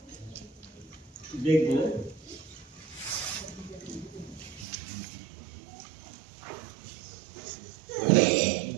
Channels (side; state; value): left; drops out; at 4.7 s